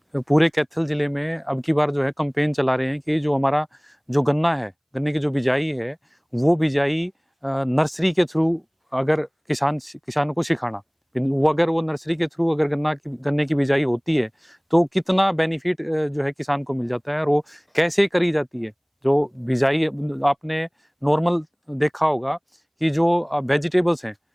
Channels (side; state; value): both; identical; correlation 1.00